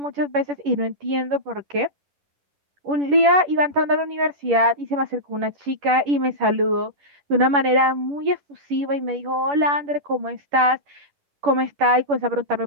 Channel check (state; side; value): late; left; 10 ms